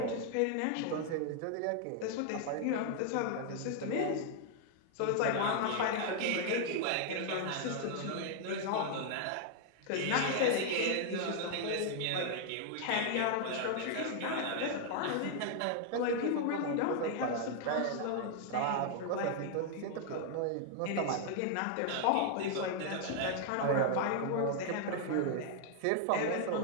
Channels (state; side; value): different; both; correlation 0.00